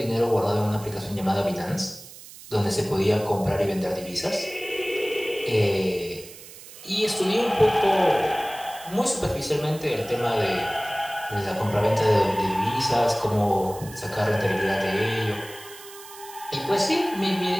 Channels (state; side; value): noise; right; hiss, 17 dB below the sound